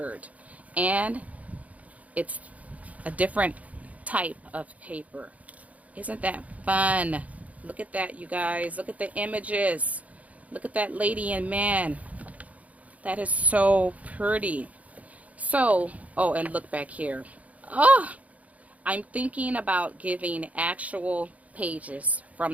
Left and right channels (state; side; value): late; left; 0.070 ms